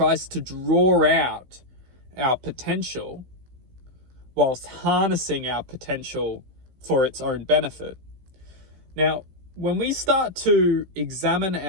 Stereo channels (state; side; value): late; left; 16 ms